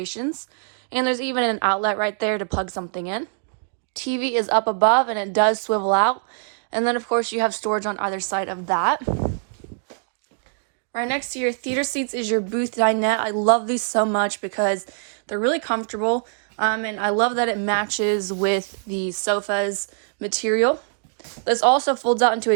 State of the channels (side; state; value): left; silent; digital silence